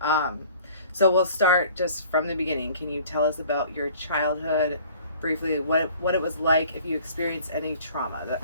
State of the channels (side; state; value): both; inverted; correlation -0.51